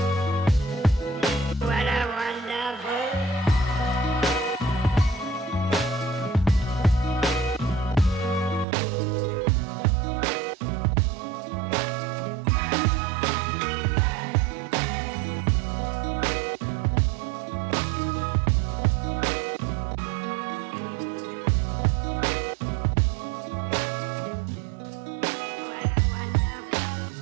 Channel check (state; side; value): drops out; left; at 8.7 s